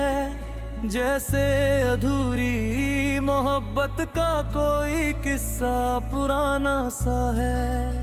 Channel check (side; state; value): both; identical; correlation 1.00